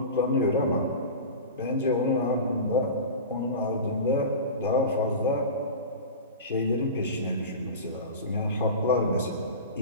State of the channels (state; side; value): inverted; both; correlation -0.30